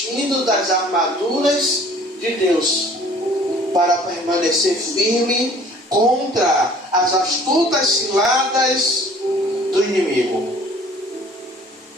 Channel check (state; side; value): normal; both; correlation 0.52